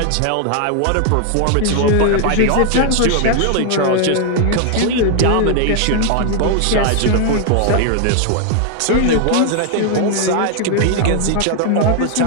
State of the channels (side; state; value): both; different; correlation 0.00